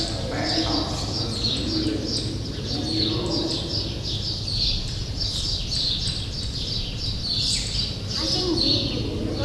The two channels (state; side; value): identical; both; correlation 1.00